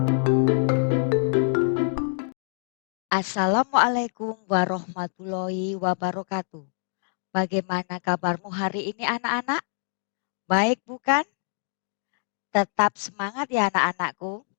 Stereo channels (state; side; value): silent; right; 61 dB below the other